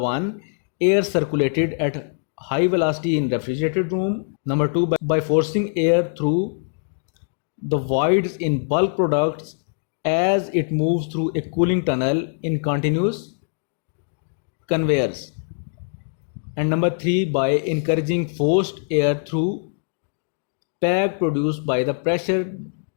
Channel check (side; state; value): right; silent; digital silence